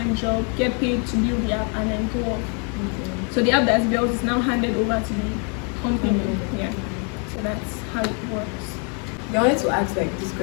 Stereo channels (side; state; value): right; quieter; 38.4 dB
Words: job, get paid to build the app, and then go off. So the app that's built is now handed over to the company. Yeah. So that's how it works. I wanted to ask like this